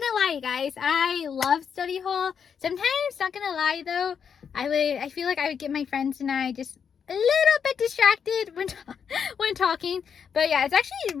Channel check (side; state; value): right; quieter; 7.1 dB